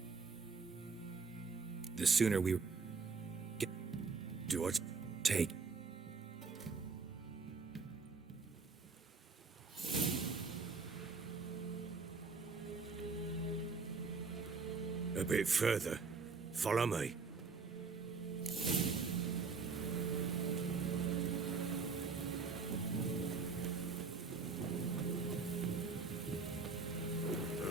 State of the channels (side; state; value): left; quieter; 4.7 dB